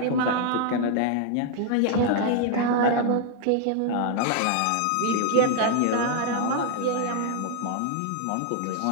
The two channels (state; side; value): different; both; correlation 0.00